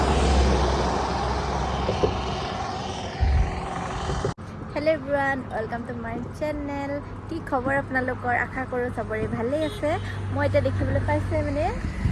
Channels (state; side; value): identical; both; correlation 1.00